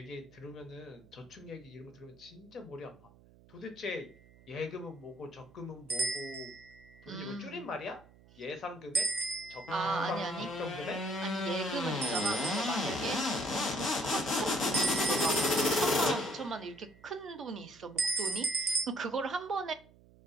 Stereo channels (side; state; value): right; noise; hum, 25 dB below the sound